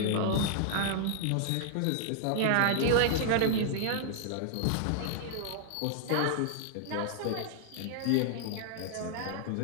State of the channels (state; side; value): different; both; correlation -0.01